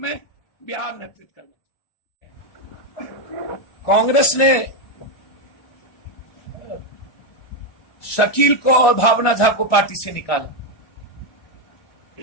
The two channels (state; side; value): late; right; 1.4 ms